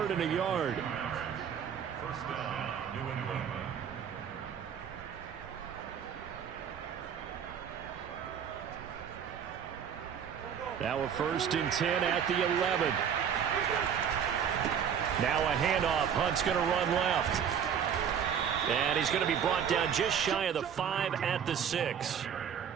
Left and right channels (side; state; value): left; quieter; 8.0 dB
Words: and a yard. 1st down, New England. Now a 1st and 10 at the 11. Now a handoff. Hunt's going to run left. And he's going to be brought down just shy of the 5 at the 6.